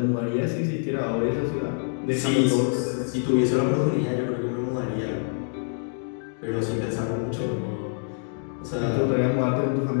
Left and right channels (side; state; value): right; silent; digital silence